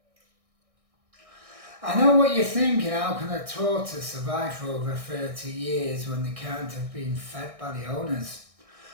I know what you're thinking, how can a tortoise survive for over 30 years when they can't have been fed by the owners?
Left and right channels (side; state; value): left; late; 1.6 ms